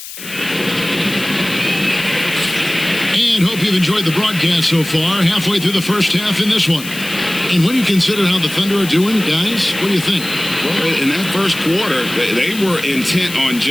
Hope you've enjoyed the broadcast so far. Halfway through the first half in this one. And when you consider how the Thunder are doing, guys, what do you think? Well, in that first quarter, they were intent on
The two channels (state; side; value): noise; left; hiss, 12 dB below the sound